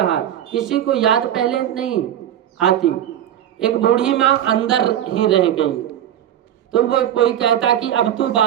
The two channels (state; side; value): quieter; left; 11.0 dB